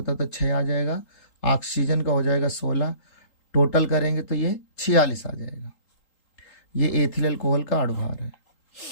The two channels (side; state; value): right; late; 3.8 ms